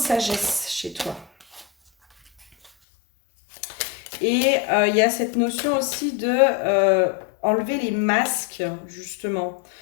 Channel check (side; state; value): right; drops out; at 2.7 s